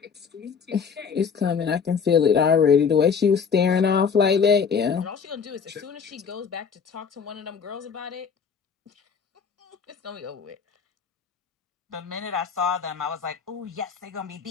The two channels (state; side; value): quieter; right; 6.3 dB